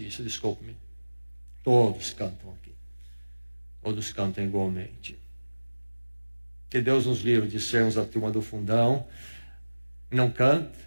isso, desculpe-me. Todos cantam aqui. Todos cantam igualmente. Que Deus nos livre de sermos a turma do fundão. Não canta,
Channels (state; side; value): inverted; both; correlation -1.00